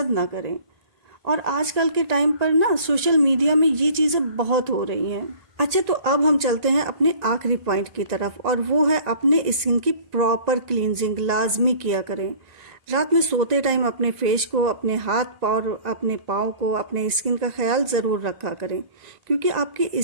ना करें। और आजकल के टाइम पर ना सोशल मीडिया में ये चीज़ें बहुत हो रही हैं। अच्छा, तो अब हम चलते हैं अपने आखिरी पॉइंट की तरफ, और वो है अपने स्किन की प्रॉपर क्लींजिंग लाजमी किया करें। रात में सोते टाइम अपने फेस को, अपने हाथ और अपने पाँव को, अपने स्किन का ख्याल ज़रूर रखा करें, क्योंकि आपकी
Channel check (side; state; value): left; late; 1.9 ms